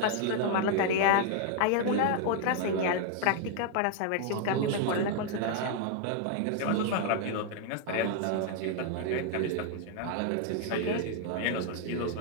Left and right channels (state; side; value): different; both; correlation 0.00